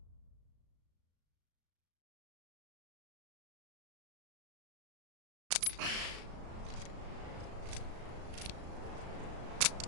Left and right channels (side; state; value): left; late; 35 ms